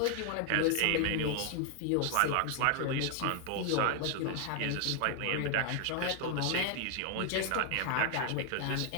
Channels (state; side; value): different; both; correlation 0.00